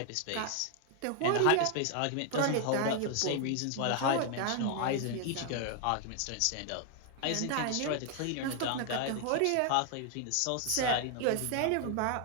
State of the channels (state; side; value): different; both; correlation 0.00